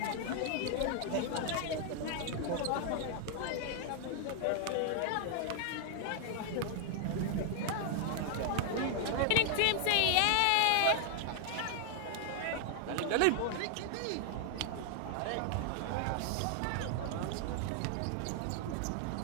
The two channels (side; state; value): both; different; correlation 0.00